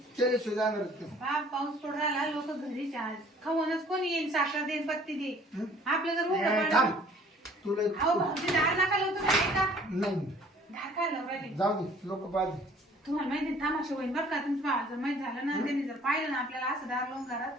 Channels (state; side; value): normal; both; correlation 0.54